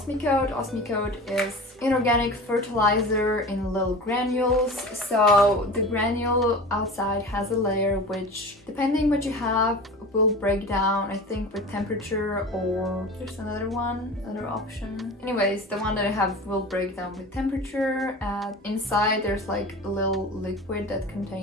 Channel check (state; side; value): normal; both; correlation 0.35